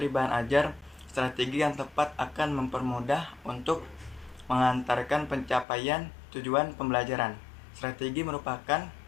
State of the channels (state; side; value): drops out; right; at 5.7 s